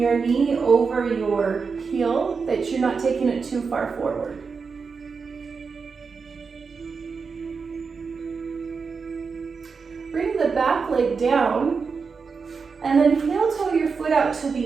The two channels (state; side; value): quieter; left; 5.2 dB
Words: knee over your heel, that you're not taking it too far forward. Bring the back leg down, and then heel toe your foot out to